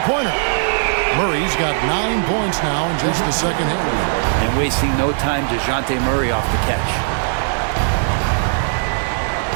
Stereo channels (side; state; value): left; silent; digital silence